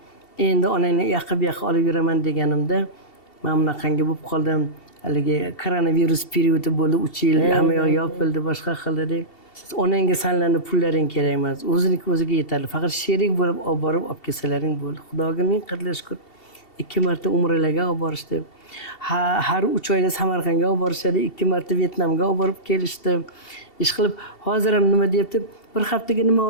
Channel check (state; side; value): late; right; 2.7 ms